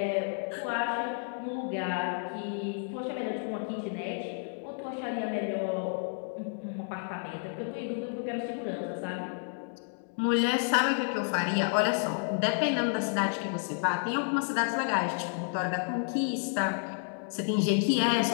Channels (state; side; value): silent; right; 57 dB below the other